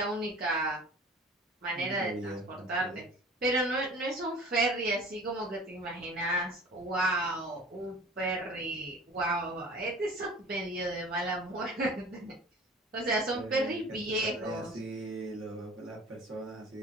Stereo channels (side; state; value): both; normal; correlation 0.43